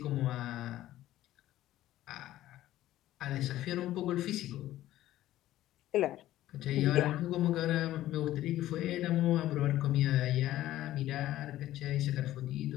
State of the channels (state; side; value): quieter; right; 14.3 dB